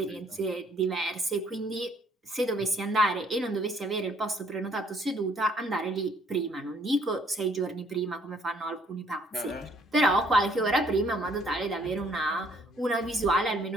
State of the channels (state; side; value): normal; both; correlation 0.64